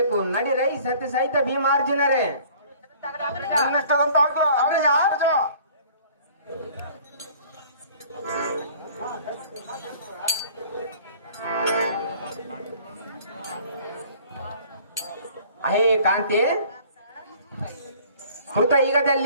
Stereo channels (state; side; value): inverted; both; correlation -0.51